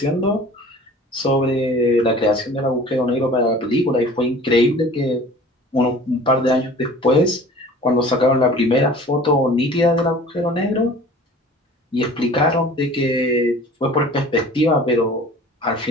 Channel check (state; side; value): normal; both; correlation 0.45